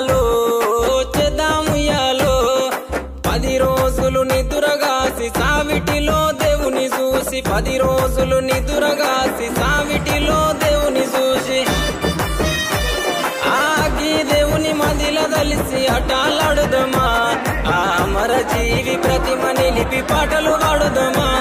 చేద్దాముయాలో 10 రోజులు నిదురగాసి సావిటిలో దేవుని చూసి 10 రోజులు నిదురగాసి సావిటిలో దేవుని చూసి ఆగి దేవుని మదిల దలిసి అటాలాడుదమా ఆ అమర జీవి ప్రతిమ నిలిపి పాటలు పాడుదమా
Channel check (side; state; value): both; identical; correlation 1.00